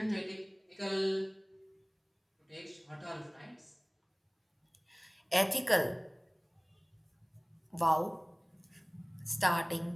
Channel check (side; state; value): both; identical; correlation 1.00